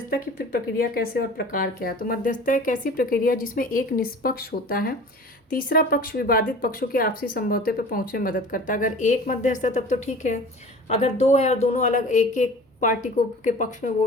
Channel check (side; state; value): both; normal; correlation 0.42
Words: की फिर प्रक्रिया कैसे और प्रकार क्या है। तो मध्यस्थता एक ऐसी प्रक्रिया जिसमें एक निष्पक्ष होता है, तीसरा पक्ष विवादित पक्षों के आपसी समझौते पर पहुंचने में मदद करता है। अगर एक मध्यस्थ है तब तो ठीक है, अगर दो है और दोनों अलग एक एक पार्टी को के पक्ष में वो